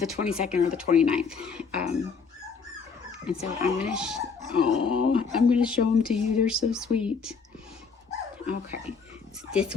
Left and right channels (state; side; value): quieter; right; 5.4 dB